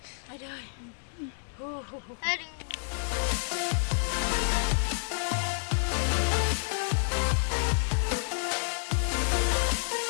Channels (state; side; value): silent; right; digital silence